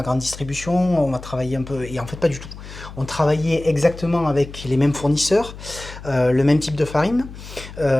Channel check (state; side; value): noise; left; hum, 14 dB below the sound